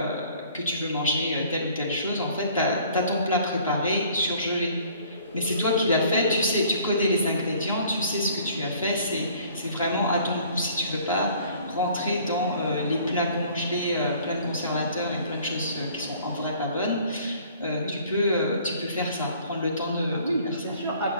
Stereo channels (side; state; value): both; inverted; correlation -0.55